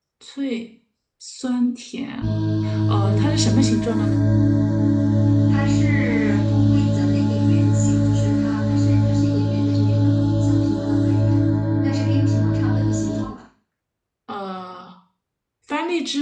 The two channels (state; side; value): identical; both; correlation 1.00